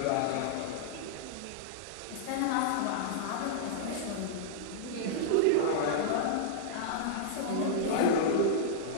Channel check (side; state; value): both; different; correlation -0.02